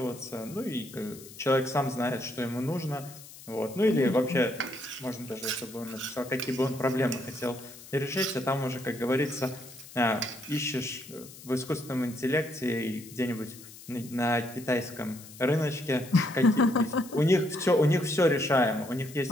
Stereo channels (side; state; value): left; noise; hiss, 18 dB below the sound